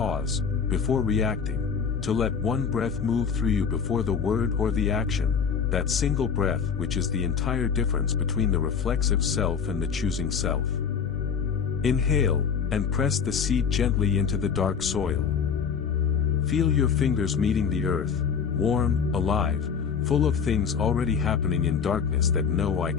before reacting, to let one breath move through you before the word or the action, that single breath which is the entire difference between the reflexive self and the choosing self. Inhale, and press the seed gently into the dark soil. Feel your fingers meeting the earth, warm, alive, full of things already happening in darkness that no eye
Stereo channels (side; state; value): right; quieter; 6.5 dB